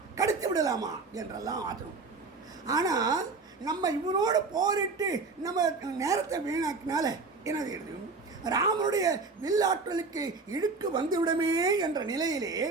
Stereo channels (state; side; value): quieter; left; 4.1 dB